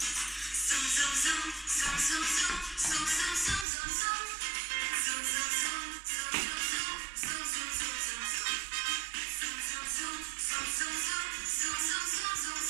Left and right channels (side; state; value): left; drops out; at 3.7 s